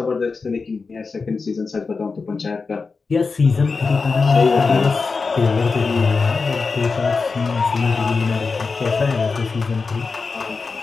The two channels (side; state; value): right; quieter; 4.5 dB